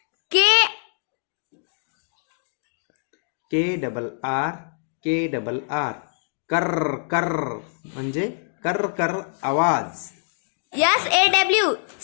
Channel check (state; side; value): silent; right; digital silence